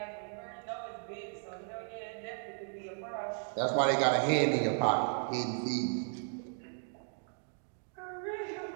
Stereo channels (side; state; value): left; silent; 54 dB below the other